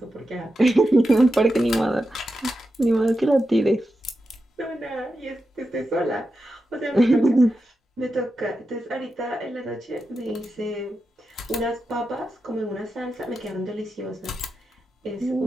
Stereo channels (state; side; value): normal; both; correlation 0.89